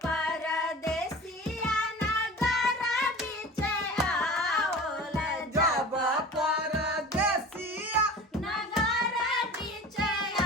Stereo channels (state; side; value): normal; both; correlation 0.38